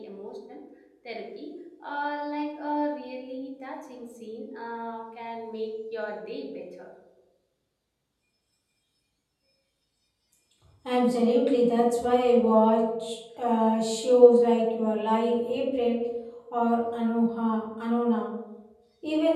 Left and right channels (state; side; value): identical; both; correlation 1.00